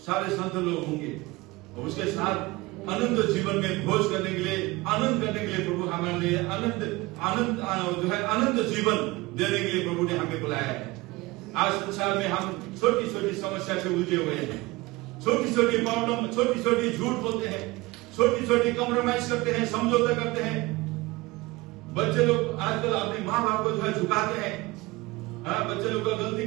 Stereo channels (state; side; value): quieter; left; 21.8 dB